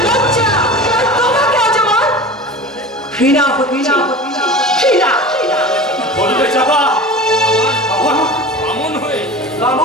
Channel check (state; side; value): normal; both; correlation 0.34